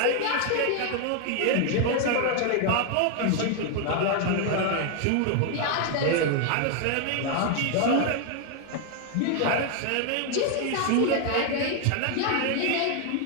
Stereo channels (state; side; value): different; both; correlation 0.00